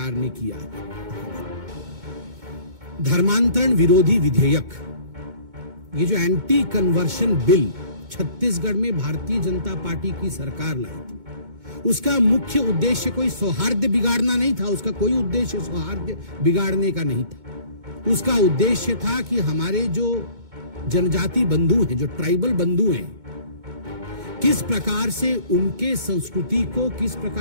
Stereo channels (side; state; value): left; late; 2.2 ms